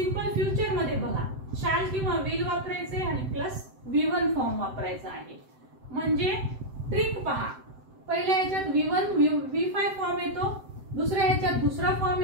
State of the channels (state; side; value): late; left; 7.8 ms